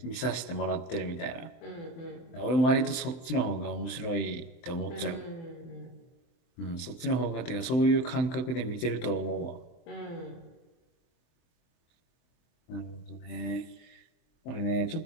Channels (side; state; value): right; late; 23 ms